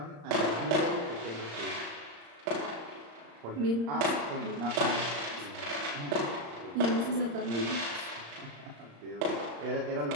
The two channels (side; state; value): left; late; 35 ms